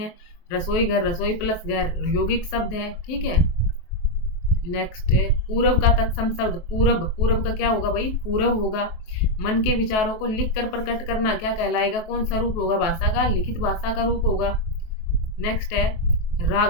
रसोई घर, रसोई प्लस घर यौगिक शब्द है। ठीक है, नेक्स्ट है पूरब का तत्सम शब्द। पूरब, पूरब का क्या होगा भाई? पूरब होगा। मन के विचारों को लिख कर प्रकट करना क्या कहलाएगा? कौन सा रूप होगा? भाषा का लिखित भाषा का रूप होगा। नेक्स्ट है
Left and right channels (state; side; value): late; right; 23 ms